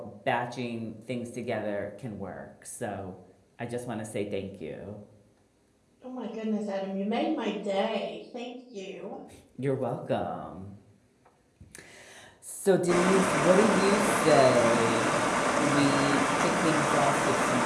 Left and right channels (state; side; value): identical; both; correlation 1.00